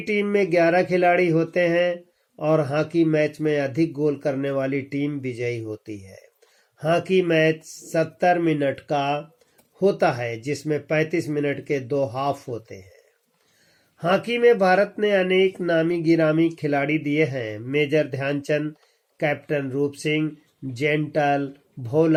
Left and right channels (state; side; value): identical; both; correlation 1.00